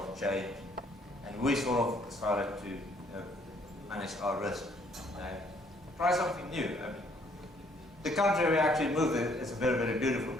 of change, and we sort of decided to manage our risk and try something new. I mean, the country we actually moved in is a very, very beautiful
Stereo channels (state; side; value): normal; both; correlation 0.65